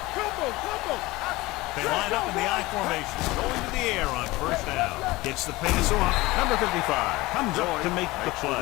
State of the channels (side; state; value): right; quieter; 20.4 dB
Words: Combo. They line up in the I formation, going to the air on first down. Gets the pass off. Number 55 comes up to make the